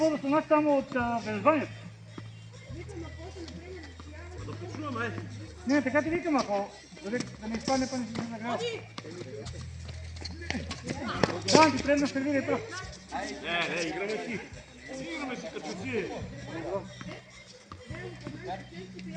стана само от Велзванието. Да почуваме. Не, така ти викам, ако да не изпадне, па не си нагрява. Да, ти предна сервира и то. Не, играме си. Играме си като си.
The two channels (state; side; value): identical; both; correlation 1.00